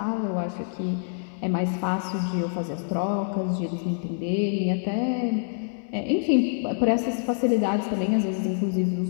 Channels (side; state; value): right; silent; digital silence